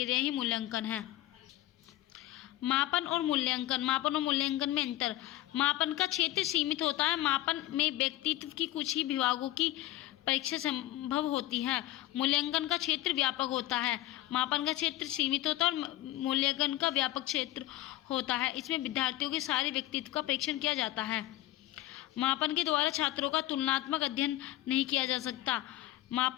ही मूल्यांकन है। मापन और मूल्यांकन। मापन और मूल्यांकन में अंतर। मापन का क्षेत्र सीमित होता है। मापन में व्यक्तित्व की कुछ ही विभागों की परीक्षा संभव होती है। मूल्यांकन का क्षेत्र व्यापक होता है। मापन का क्षेत्र सीमित होता है और मूल्यांकन का व्यापक क्षेत्र होता है। इसमें विद्यार्थियों के सारे व्यक्तित्व का परीक्षण किया जाता है। मापन के द्वारा छात्रों का तुलनात्मक अध्ययन नहीं किया जा सकता।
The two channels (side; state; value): right; quieter; 15.6 dB